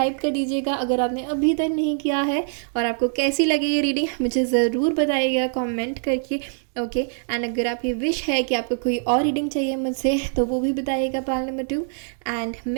कर दीजिएगा अगर आपने अभी तक नहीं किया है। और आपको कैसी लगी ये रीडिंग मुझे ज़रूर बताइएगा कमेंट करके। ओके, एंड अगर आपकी विश है कि आपको कोई और रीडिंग चाहिए मुझसे तो वो भी बताइएगा। पाइल नंबर 2, एंड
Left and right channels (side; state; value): left; silent; digital silence